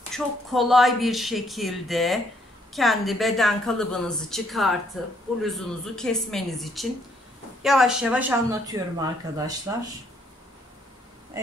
çok kolay bir şekilde kendi beden kalıbınızı çıkartıp bluzunuzu kesmeniz için yavaş yavaş anlatıyorum arkadaşlar.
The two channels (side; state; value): both; normal; correlation 0.69